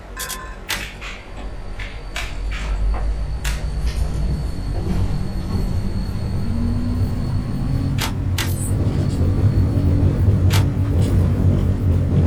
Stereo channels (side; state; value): both; identical; correlation 1.00